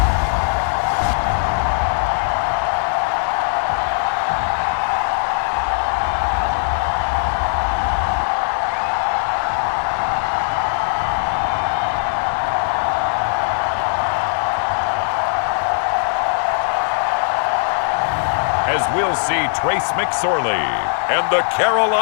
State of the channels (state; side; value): silent; right; digital silence